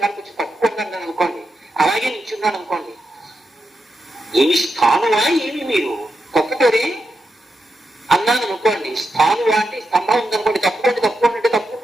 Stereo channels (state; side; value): normal; both; correlation 0.86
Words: వచ్చి తప్పుకున్నాను అనుకోండి, అలాగే నిల్చున్నాను అనుకోండి, ఏమి స్థానువా ఏమి మీరు తప్పుకోరే అన్నాను అనుకోండి. స్థానువా అంటే స్తంభం ఉందనుకోండి, తప్పుకోండి అంటే